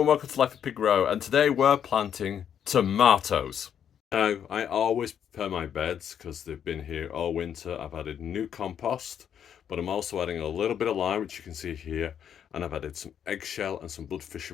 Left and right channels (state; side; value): quieter; right; 8.8 dB